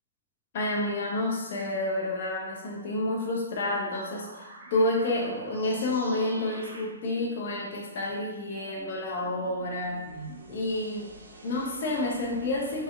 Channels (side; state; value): both; inverted; correlation -0.36